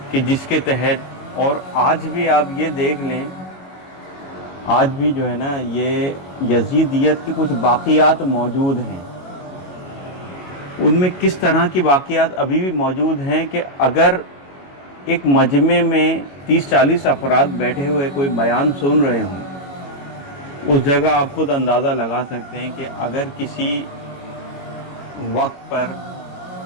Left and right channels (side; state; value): right; late; 21 ms